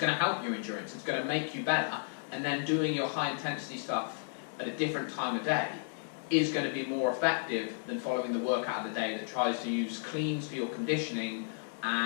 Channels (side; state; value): right; silent; digital silence